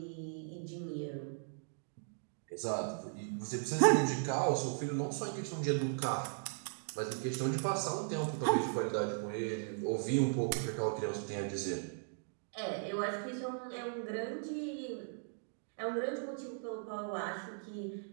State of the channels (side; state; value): left; silent; digital silence